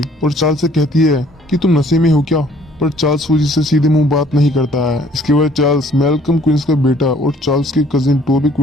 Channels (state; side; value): normal; both; correlation 0.59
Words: और चार्ल्स से कहती है कि तुम नशे में हो क्या, पर चार्ल्स सूजी से सीधे मुंह बात नहीं करता है। इसके बाद चार्ल्स मैल्कम क्वींस का बेटा और चार्ल्स के कजिन टोबी